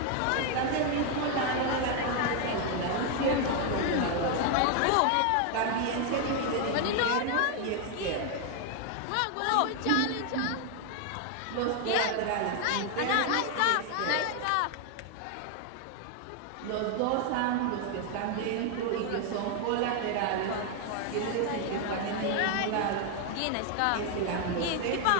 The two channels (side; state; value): both; different; correlation 0.01